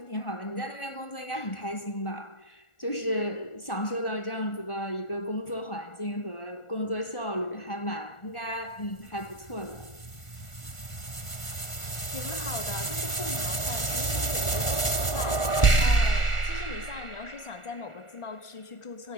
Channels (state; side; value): late; right; 1.4 ms